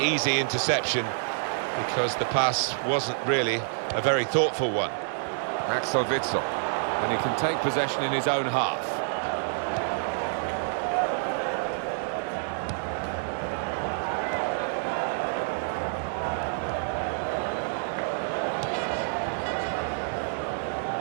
interception because the pass wasn't really a very thoughtful one. Axel Witsel. And he can take possession in his own half.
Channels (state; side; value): silent; left; digital silence